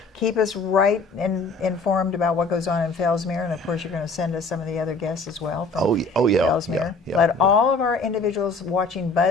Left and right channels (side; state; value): right; quieter; 3.4 dB